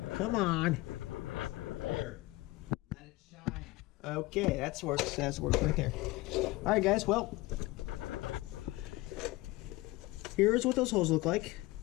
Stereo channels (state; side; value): quieter; right; 20.3 dB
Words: Come on. Here. Let it shine. Okay, that's works. That's works right there. Alright guys, well. Here's what those holes look like.